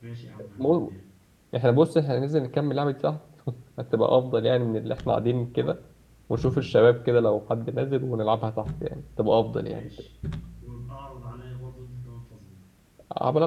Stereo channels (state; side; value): identical; both; correlation 1.00